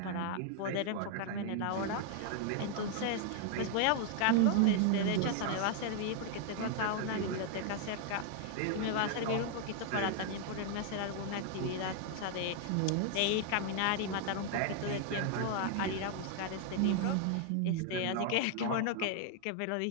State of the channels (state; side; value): different; both; correlation 0.00